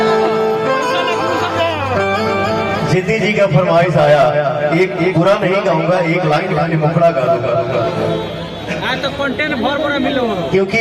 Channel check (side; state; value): both; identical; correlation 1.00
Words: जिद्दी जी का फरमाइश आया एक पूरा नहीं गाऊंगा, एक लाइन खाली मुखड़ा गा दूंगा तो कंटेंट भर मिलो क्योंकि